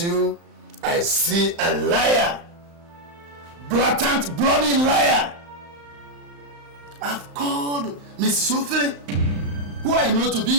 I see a liar. Blatant, bloody liar. I've called Mrs. Ophelia, who I know to be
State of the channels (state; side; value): late; left; 35 ms